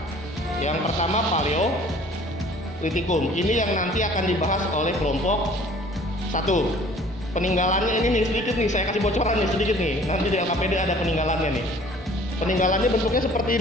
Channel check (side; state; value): both; normal; correlation 0.52